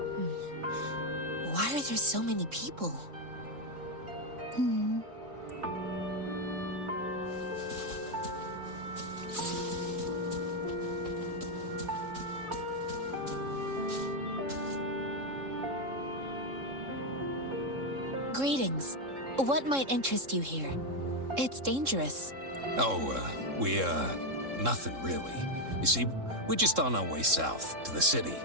Why are there so many people? Greetings. What might interest you here? It's dangerous. Oh, nothing really. You see, we're just on our way south to the city.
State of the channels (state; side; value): late; left; 3.7 ms